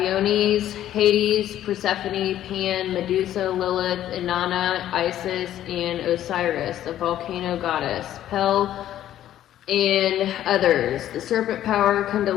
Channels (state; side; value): quieter; right; 12.1 dB